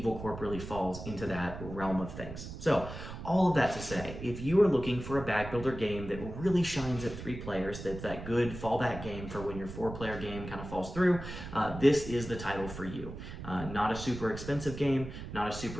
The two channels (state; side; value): noise; right; rumble, 10 dB below the sound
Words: Corp really falls into that realm of things. So all of that to say, if you are looking for a bag builder game that really shines at 3 players, that's that good fallback game for when your 4-player game kind of falls through, this is the title for you. Not a super expensive game, not a